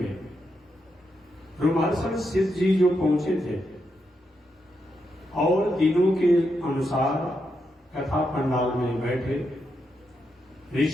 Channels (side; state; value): both; normal; correlation 0.83